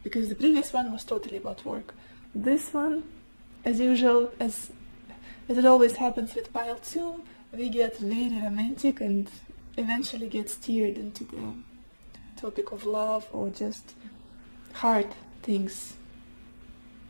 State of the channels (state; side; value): inverted; both; correlation -1.00